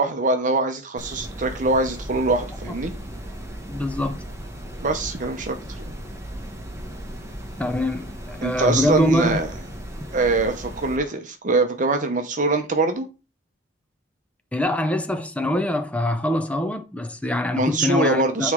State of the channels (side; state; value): both; normal; correlation 0.37